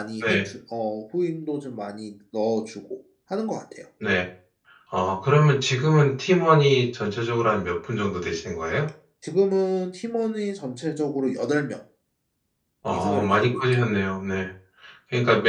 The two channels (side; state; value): both; identical; correlation 1.00